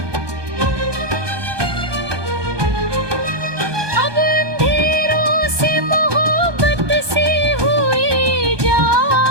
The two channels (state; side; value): late; left; 1.2 ms